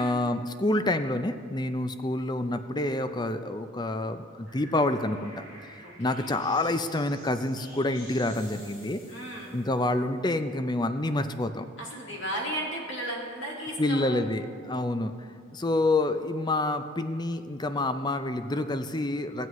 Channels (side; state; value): both; normal; correlation 0.59